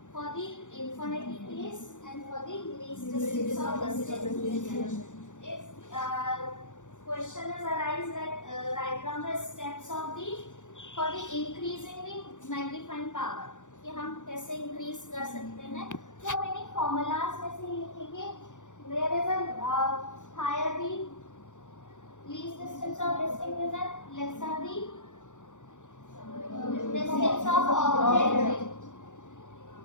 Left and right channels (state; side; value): late; right; 0.86 ms